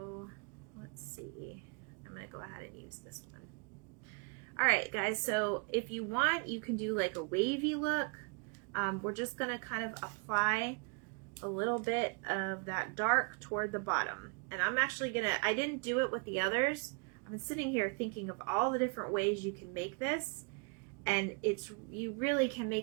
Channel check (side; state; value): left; quieter; 35.4 dB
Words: let's see. I'm gonna go ahead and use this one. All right, guys. So if you want, you can do like a wavy look. We're just gonna kind of apply a little bit of that dark toward the bottom. And I'm actually gonna, I didn't do it with the others. I'm sitting here thinking of all the different ways you can make this, and it's, you really can